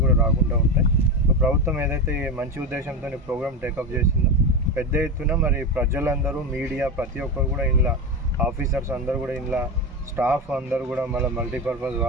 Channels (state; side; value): normal; both; correlation 0.19